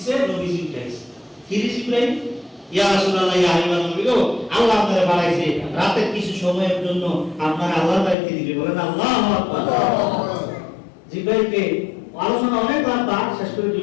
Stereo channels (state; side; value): drops out; right; at 8.2 s